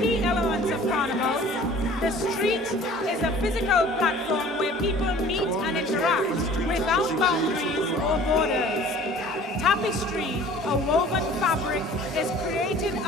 elements of carnival. The street is a physical platform where people meet and interact without boundaries or borders. Tapestry, a woven fabric, is created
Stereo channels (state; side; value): normal; both; correlation 0.48